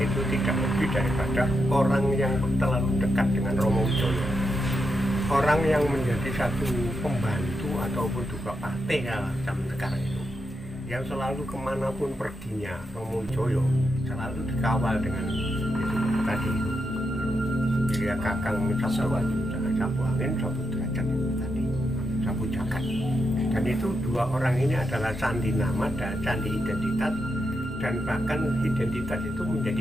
itu tidak lebih daripada orang yang terlalu dekat dengan Romo Wijoyo. Orang yang menjadi satu pembantu ataupun juga partai zaman sekarang itu, yang selalu kemanapun perginya Romo Wijoyo selalu dikawal dengan itu tadi itu. Jadi ya kakang sapu angin, sapu derajat itu tadi, sapu jagat. Dan itu dua orang ini adalah sandi nama dan sandi identitas, dan bahkan identitas itu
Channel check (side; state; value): both; normal; correlation 0.84